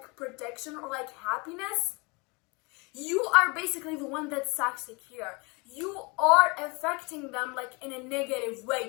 protection or like happiness, you are basically the one that's toxic here. You are affecting them like in a negative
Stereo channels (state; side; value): quieter; right; 28.6 dB